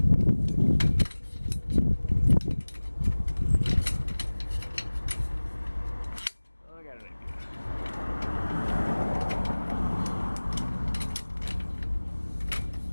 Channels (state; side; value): inverted; both; correlation -1.00